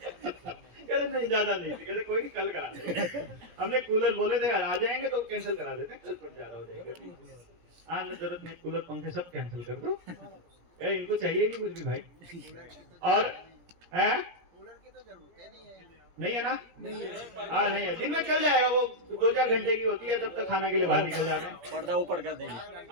नहीं ज्यादा नहीं थी, कहते कोई नहीं कल करा देंगे। हमने कूलर बोले थे आ जाएंगे तो कैंसिल करा देते, कल पर ज्यादा हो जाएगा। हाँ जरूरत नहीं, कूलर पंखे सब कैंसिल कर दो, इनको चाहिए नहीं कुछ भी भाई। और कूलर की तो जरूरत नहीं है ना? हाँ नहीं है, दिन में चल जाएगा, वो 2-4 घंटे की होती है, तब तक खाना के लिए बाहर निकल जाते हैं, पर्दा ऊपर कर देंगे।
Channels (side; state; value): left; late; 17 ms